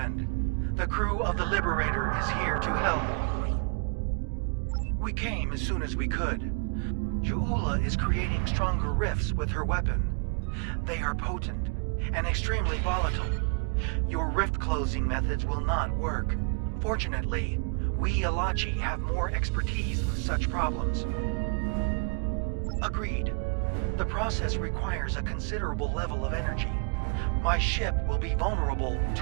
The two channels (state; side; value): quieter; left; 37.3 dB